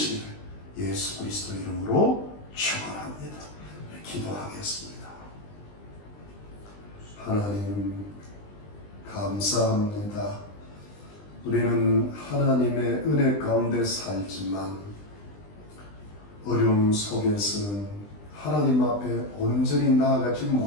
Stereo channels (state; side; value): late; right; 20 ms